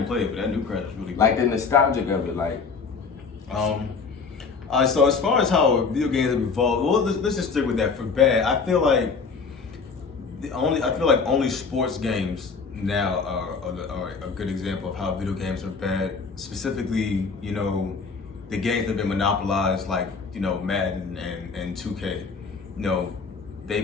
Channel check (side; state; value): right; quieter; 5.0 dB